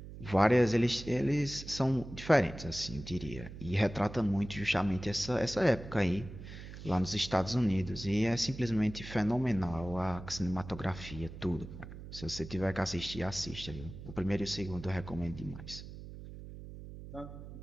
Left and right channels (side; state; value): right; noise; hum, 12 dB below the sound